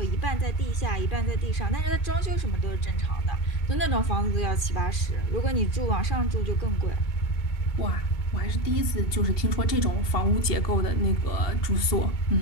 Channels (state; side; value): late; right; 2.7 ms